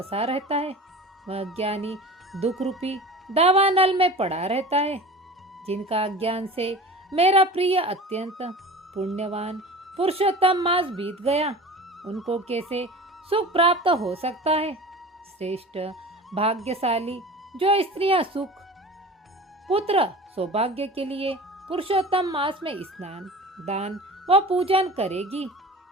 रहता है वह अज्ञानी दुख रूपी दावानल में पड़ा रहता है। जिनका अज्ञान से मेरा प्रिय अत्यंत पुण्यवान पुरुषोत्तम मास बीत गया, उनको कैसे सुख प्राप्त हो सकता है। श्रेष्ठ भाग्यशाली जो स्त्रियां सुख पुत्र सौभाग्य के लिए पुरुषोत्तम मास में स्नान दान व पूजन करेगी,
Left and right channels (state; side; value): normal; both; correlation 0.36